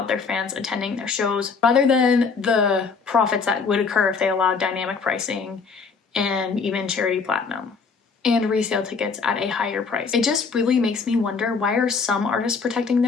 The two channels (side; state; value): right; quieter; 5.0 dB